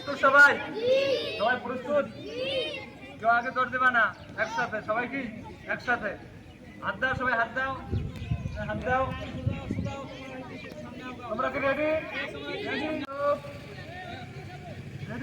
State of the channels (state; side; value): identical; both; correlation 1.00